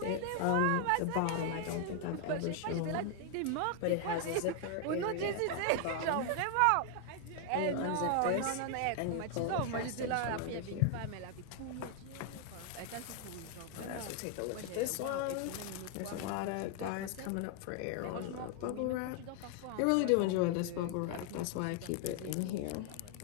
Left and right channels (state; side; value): different; both; correlation 0.00